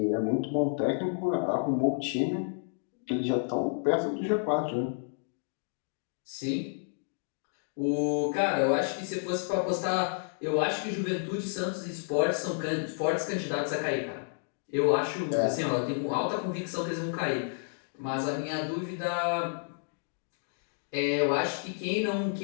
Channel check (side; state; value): right; silent; digital silence